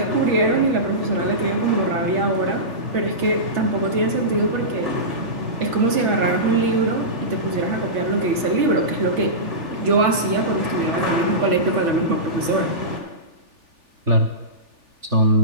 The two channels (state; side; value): late; left; 3.4 ms